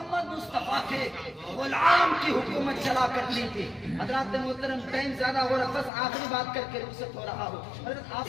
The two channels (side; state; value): right; drops out; at 5.9 s